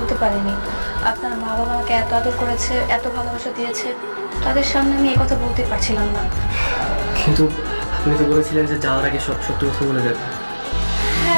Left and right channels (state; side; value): inverted; both; correlation -1.00